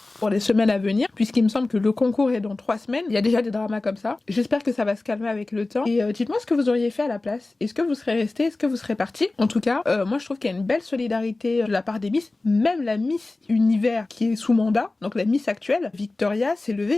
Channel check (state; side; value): quieter; right; 3.1 dB